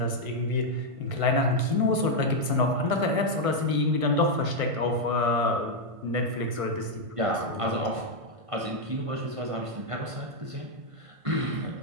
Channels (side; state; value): left; late; 1.5 ms